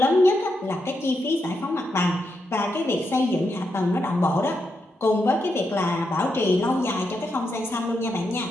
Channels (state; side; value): normal; both; correlation 0.83